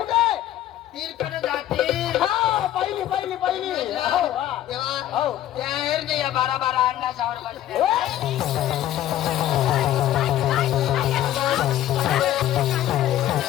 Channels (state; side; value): quieter; right; 12.6 dB